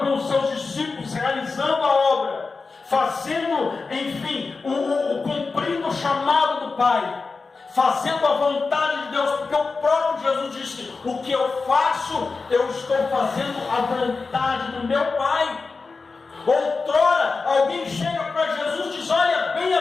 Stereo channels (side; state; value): right; quieter; 4.3 dB